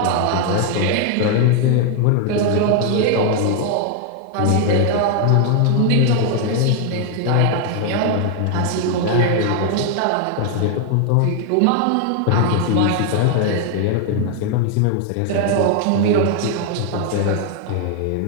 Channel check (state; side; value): different; both; correlation 0.00